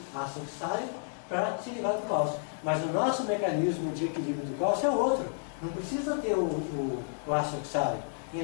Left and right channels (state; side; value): silent; right; digital silence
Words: ácido oxálico para se livrar do cálcio. Mas o nosso mecanismo de equilíbrio do cálcio é outro. Não precisa ter o ácido oxálico. E